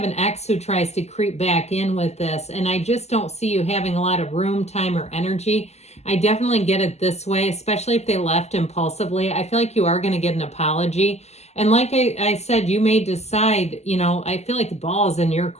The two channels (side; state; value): right; late; 0.32 ms